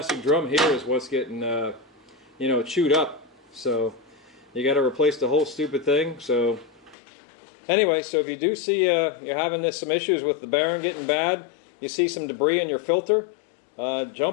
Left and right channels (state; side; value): drops out; right; at 7.0 s